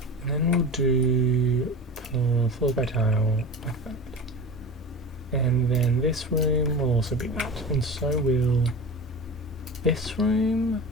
And then we'll do... floor by tile, like that. And then this room will also be that. And so will... this room...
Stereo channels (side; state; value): both; normal; correlation 0.31